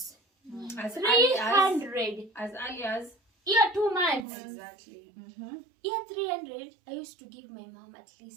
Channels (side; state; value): left; drops out; at 4.2 s